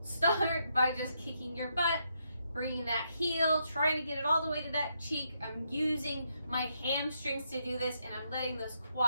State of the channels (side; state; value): both; inverted; correlation -0.78